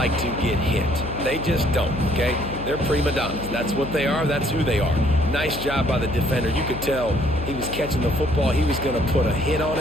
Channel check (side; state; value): left; noise; hum, 9 dB below the sound